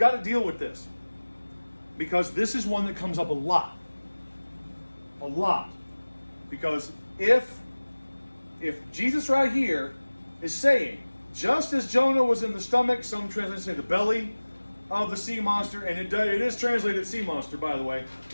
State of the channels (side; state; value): both; inverted; correlation -1.00